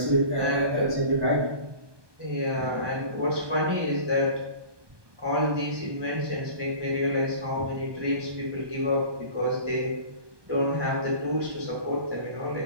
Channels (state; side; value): late; left; 1.2 ms